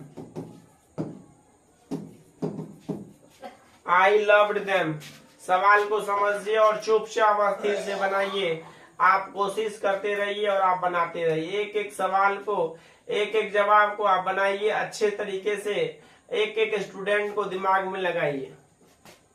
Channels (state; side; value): identical; both; correlation 1.00